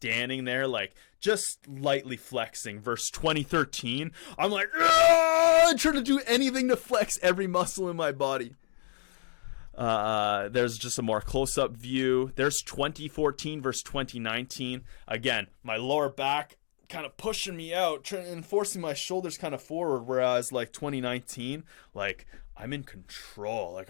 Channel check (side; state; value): right; silent; digital silence